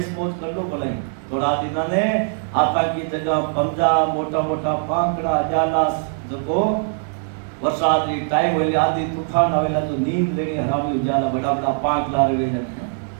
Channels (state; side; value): silent; left; digital silence